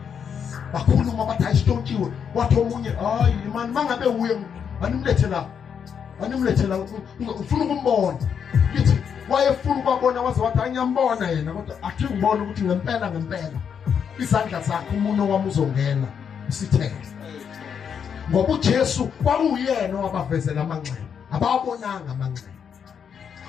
Bakhuluma bathi ayisitshontshiwe. Wathi omunye hayi man mangabe uye animlethela ufuna ukumbona. Lithi wayefuna ukubona waze wathi anyambona yena, kodwa athi ngibona ukuthi ngempela izandla zakhe umuntu wami uzongena isithele. Ngoba uJesu kwakuyena owabavezela amanxeba, abawabonanga amanxeba.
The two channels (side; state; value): right; quieter; 7.4 dB